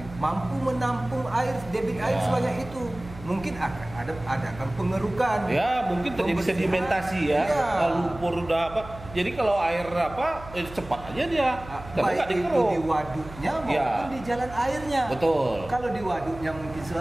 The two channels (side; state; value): right; noise; hum, 16 dB below the sound